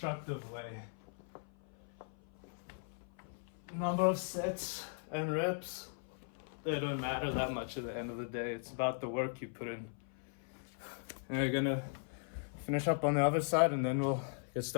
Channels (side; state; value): right; silent; 52 dB below the other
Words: way. Number of sets and reps, they don't matter that much at the end of the day. It's about the work you put in. And we're gonna finish up on the other side and then we'll get